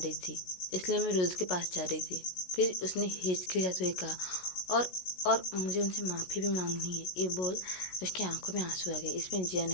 थी, इसलिए मैं रुद्र के पास जा रही थी। फिर उसने हिचकिचाते हुए कहा, और मुझे उनसे माफ़ी भी मांगनी है। ये बोल उसकी आंखों में आंसू आ गए। इसमें जिया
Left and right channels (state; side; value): late; right; 16 ms